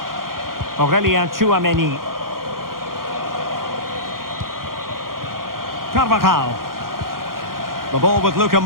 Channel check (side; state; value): left; late; 0.91 ms